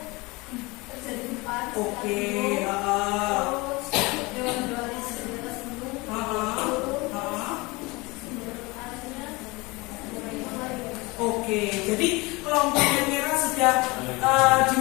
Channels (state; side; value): quieter; right; 24.3 dB